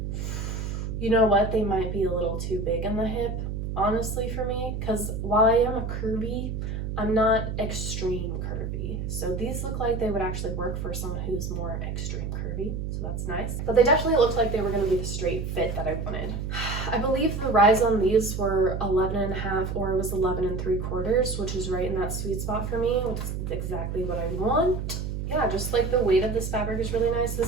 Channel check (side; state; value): right; noise; hum, 4 dB below the sound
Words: You know what? They might be a little too big in the hip, honestly, for me, because while I am a curvy, I'm not extreme curvy. So these look like they would actually work for someone who's more extreme curvy, so that's nice. But they definitely looked like they were going to be the straight fit that I wanted. I believe the rise on these were 11.5 or it was 11.75, which is right in that sweet spot for me, which is exactly what I want. Yeah, just like the weight of this fabric is really nice. This